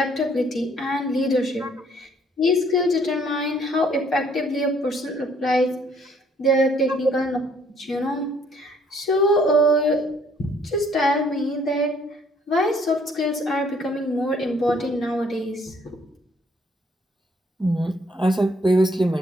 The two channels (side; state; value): both; normal; correlation 0.63